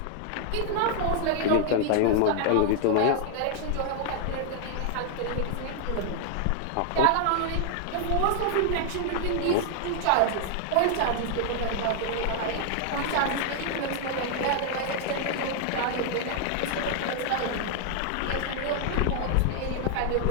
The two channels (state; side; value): different; both; correlation 0.00